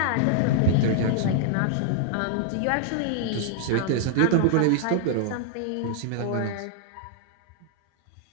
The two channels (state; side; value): different; both; correlation -0.01